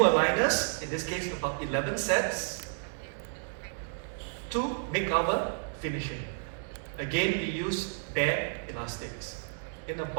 in this case about 11 sets, to make our finishing. Again, we use bare elastics in a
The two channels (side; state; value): left; silent; digital silence